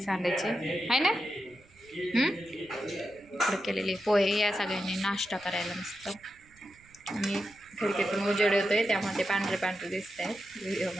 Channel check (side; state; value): right; noise; rumble, 28 dB below the sound